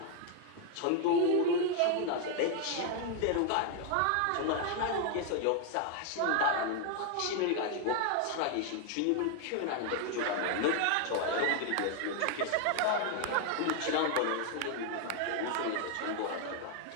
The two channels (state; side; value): different; both; correlation 0.01